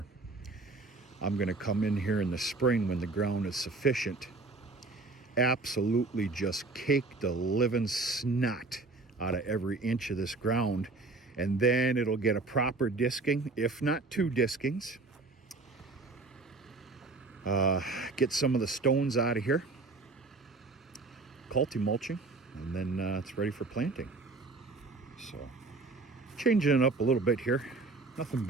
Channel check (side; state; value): left; quieter; 3.6 dB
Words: I'm going to come in here in the spring when the ground is sufficient, absolutely just cake the living snot out of every inch of this ground, and then it'll get a proper disking, if not 2 diskings. Get some of the stones out of here, mulching, and then it's ready for planting. So changing it up a little bit here, nothing